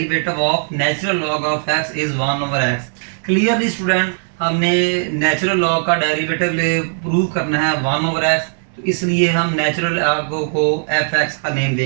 of natural log of x is 1 over x। Clearly student, हमने नेचुरल लॉग का डेरिवेटिव प्रूव करना है 1 over x, तो इसलिए हम natural log को f(x) का name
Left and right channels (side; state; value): left; silent; 67 dB below the other